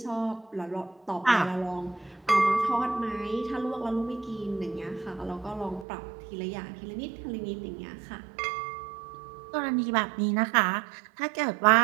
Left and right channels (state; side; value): drops out; left; at 5.9 s